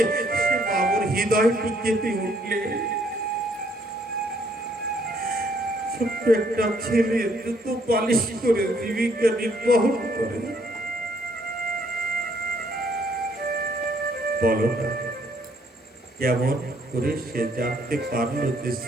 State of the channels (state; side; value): normal; both; correlation 0.67